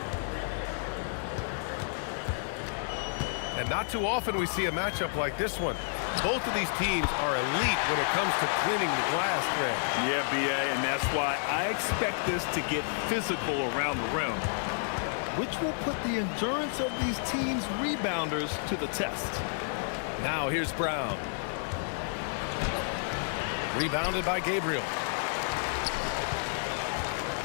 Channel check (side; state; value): right; silent; digital silence